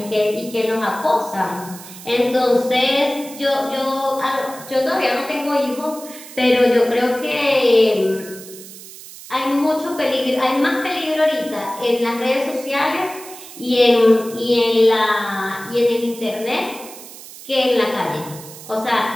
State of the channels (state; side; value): noise; right; hiss, 16 dB below the sound